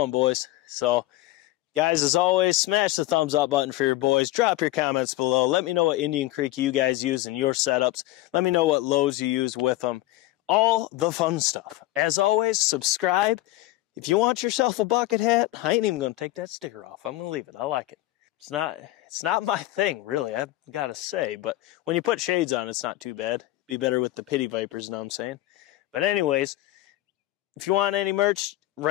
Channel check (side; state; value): right; quieter; 17.0 dB